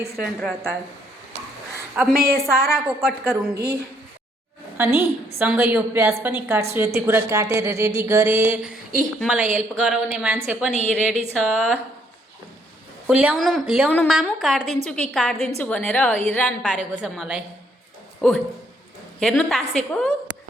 रहता है। अब मैं ये सारा को कट करूँगी अनि सँगै यो प्याज पनि काट्छु। यति कुरा काटेर रेडी गरेँ। मलाई हेल्प गराउने मान्छे पनि रेडी छ। ल्याउनु मामु, काट्दिन्छु कि काट्दिन्छु भनेर हैरान पारेको छ मलाई। हेर्नु तासेको।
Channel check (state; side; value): normal; both; correlation 0.69